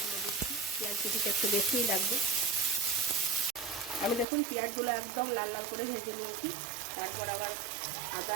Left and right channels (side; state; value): left; drops out; at 4.2 s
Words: পেঁয়াজ কুচিটা একটু বেশিই লাগবে। আমি দেখুন পেঁয়াজগুলো একদম লাল লাল করে ভেজে নিয়েছি। তারপর আবার